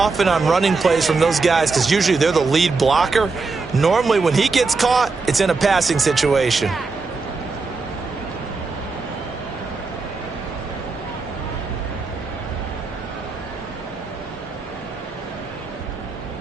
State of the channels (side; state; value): left; quieter; 4.1 dB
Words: on running plays from those guys because usually they're the lead blocker. Normally, when he gets caught, it's in a passing situation.